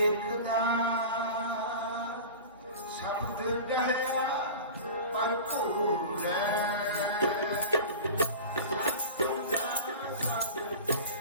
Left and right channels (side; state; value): both; inverted; correlation -0.34